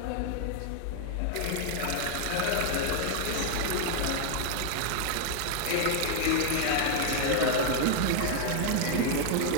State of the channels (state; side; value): different; both; correlation 0.00